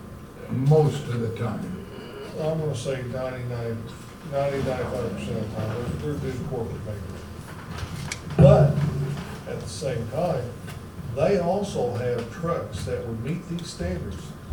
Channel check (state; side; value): identical; both; correlation 1.00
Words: most of the time. I'm gonna say 95% of the time, they're good corporate neighbors. But at the same time, they also have trucks that would meet these standards.